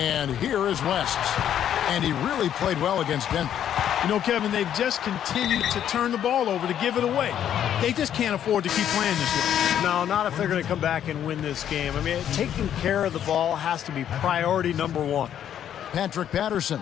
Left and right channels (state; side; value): quieter; right; 10.0 dB